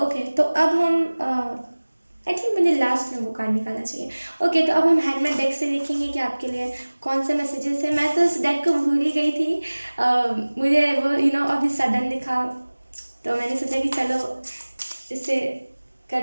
तो अब हम आई थिंक मुझे लास्ट में वो कार्ड निकालना चाहिए। ओके, तो अब हम हैंडमेड डेक से देखेंगे कि आपके लिए कौन से मैसेजेस है। मैं तो उस डेक को भूल ही गई थी। मुझे वो अभी सडन दिखा, तो मैंने सोचा कि चलो इससे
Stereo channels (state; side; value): inverted; both; correlation -1.00